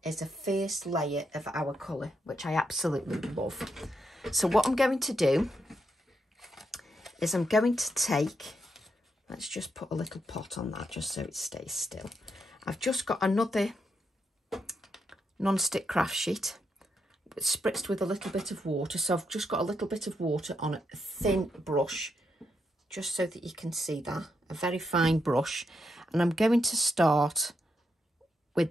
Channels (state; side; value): normal; both; correlation 0.81